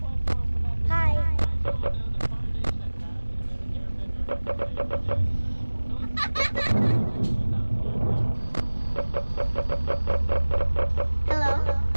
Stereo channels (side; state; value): both; inverted; correlation -1.00